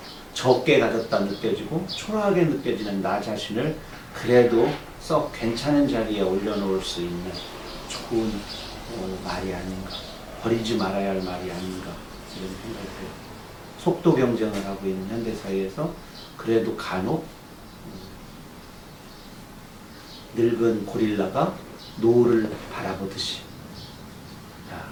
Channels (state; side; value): identical; both; correlation 1.00